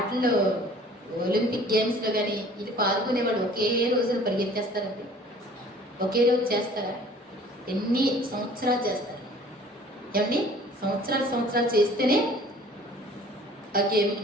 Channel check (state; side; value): normal; both; correlation 0.51